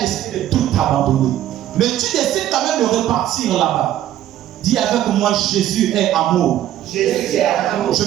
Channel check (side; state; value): left; quieter; 12.4 dB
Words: de tout abandonner. Mais tu décides quand même de repartir là-bas. Dis avec moi, Jésus est amour. Jésus est amour. Je